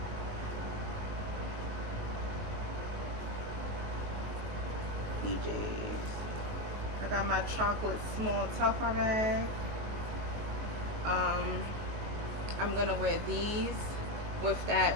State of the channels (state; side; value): late; left; 19 ms